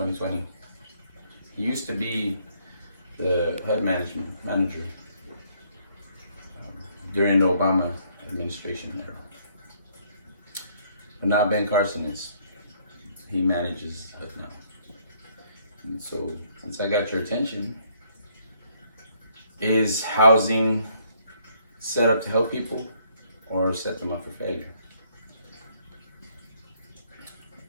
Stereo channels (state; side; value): inverted; both; correlation -0.67